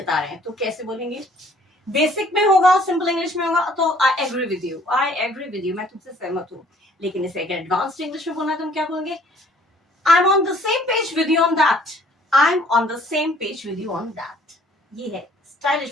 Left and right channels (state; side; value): normal; both; correlation 0.59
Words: रहे हैं, तो कैसे बोलेंगे? बेसिक में होगा, सिंपल इंग्लिश में होगा तो I agree with you, I agree with you, मैं तुमसे सहमत हूँ। लेकिन इसे अगर एडवांस्ड इंग्लिश में बोलना है तो हम क्या बोलेंगे? I am on the same page with you on that, I am on the same page with you on that. ये है स्टाइलिश